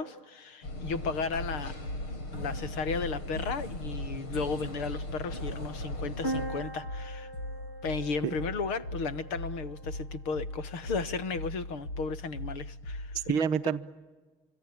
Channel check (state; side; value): late; right; 6.5 ms